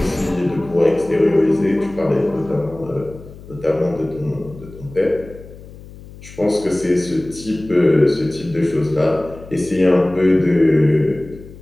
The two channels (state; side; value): noise; left; hum, 18 dB below the sound